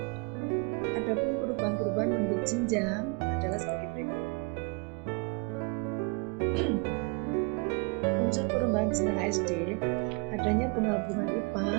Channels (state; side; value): quieter; left; 31.7 dB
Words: Adapun perubahan-perubahan bentuk jenjang adalah sebagai berikut. Unsur perubahan jenjang SD, adanya penggabungan